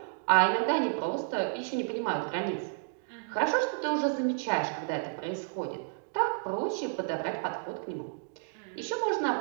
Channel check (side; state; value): left; silent; digital silence